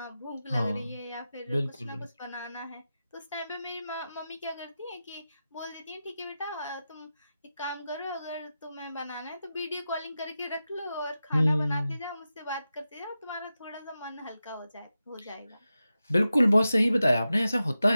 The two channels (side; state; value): both; inverted; correlation -0.92